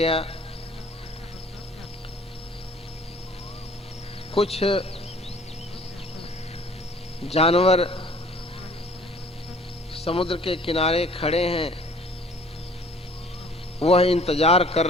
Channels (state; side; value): normal; both; correlation 0.53